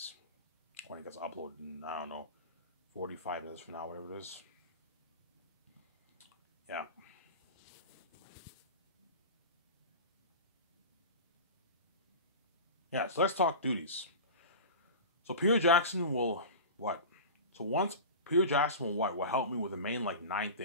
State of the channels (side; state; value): both; inverted; correlation -0.31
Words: When it gets uploaded in, I don't know, 45 minutes from now, whatever it is. Yeah. Yeah, so let's talk duties. So Peter Jackson will what? So once Peter Jackson will what? Will help me with the main like 9